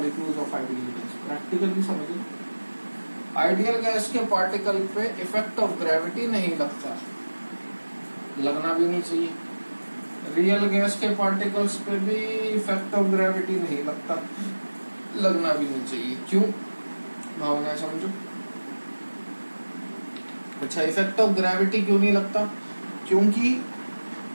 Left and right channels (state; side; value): inverted; both; correlation -1.00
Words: of ideal gas. Practically समझिए, आइडियल गैस के पार्टिकल पे इफेक्ट ऑफ ग्रेविटी नहीं लगता, लगना भी नहीं चाहिए। रियल गैस के पार्टिकल्स पे भी इफेक्ट ऑफ ग्रेविटी नहीं लगता, लगना भी नहीं चाहिए। क्यों? भावना समझो। अच्छा, इफेक्ट ऑफ ग्रेविटी क्यों नहीं लगता? क्योंकि